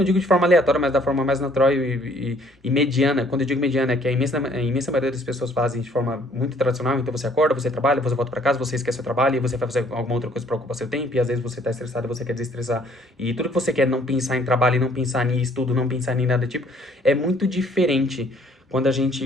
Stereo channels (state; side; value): normal; both; correlation 0.61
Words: digo de forma aleatória, mas da forma mais natural e mediana. Quando eu digo mediana, é que a imensa maioria das pessoas fazem de forma muito tradicional, então você acorda, você trabalha, você volta para casa, você esquece o trabalho, e você vai fazer alguma outra coisa para ocupar seu tempo, e às vezes você tá estressado e você quer desestressar, e tudo que você quer não pensar em trabalho, e não pensar em estudo, não pensar em nada do tipo, é muito diferente quando a